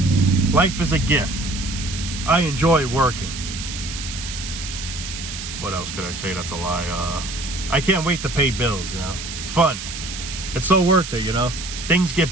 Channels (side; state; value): right; noise; hiss, 8 dB below the sound